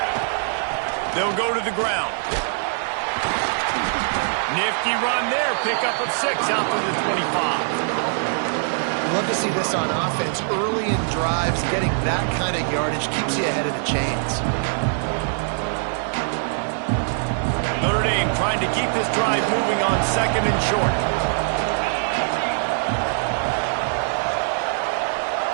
They'll go to the ground. Nifty run there. Pickup of 6 out to the 25. Love to see this on offense. Early in drives, getting that kind of yardage keeps you ahead of the chains. Notre Dame trying to keep this drive moving on 2nd and short.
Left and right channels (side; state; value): left; silent; 62 dB below the other